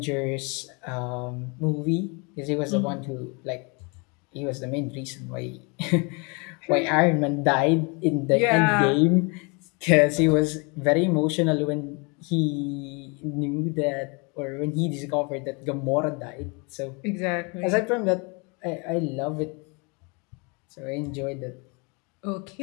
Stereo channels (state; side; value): quieter; right; 31.2 dB